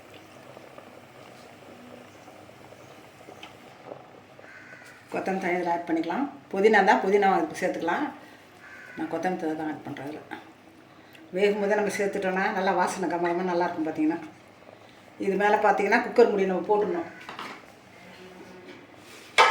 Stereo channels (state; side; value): identical; both; correlation 1.00